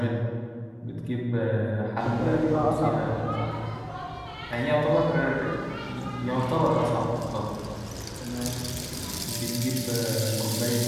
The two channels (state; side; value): identical; both; correlation 1.00